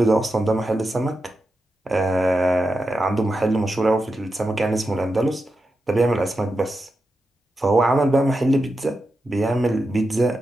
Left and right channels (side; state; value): both; normal; correlation 0.89